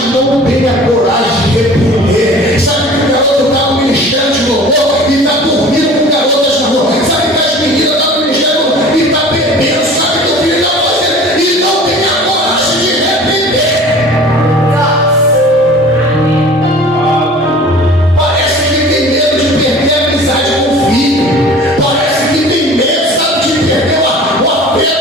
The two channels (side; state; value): both; normal; correlation 0.44